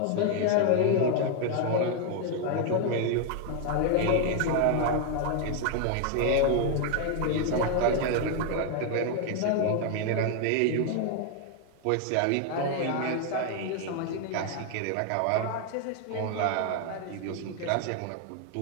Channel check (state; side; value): different; both; correlation 0.00